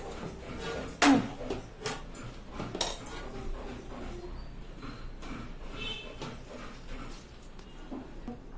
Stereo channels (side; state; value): both; identical; correlation 1.00